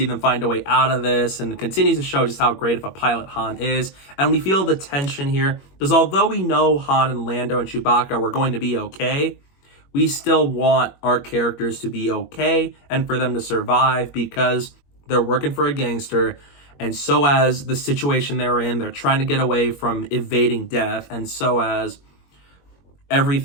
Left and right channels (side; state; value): right; late; 21 ms